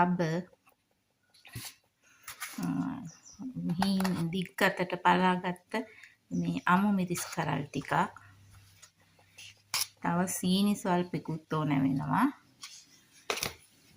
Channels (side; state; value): both; identical; correlation 1.00